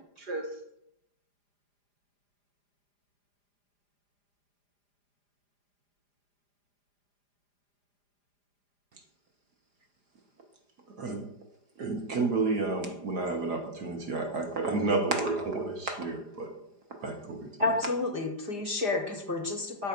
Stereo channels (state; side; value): late; left; 4.9 ms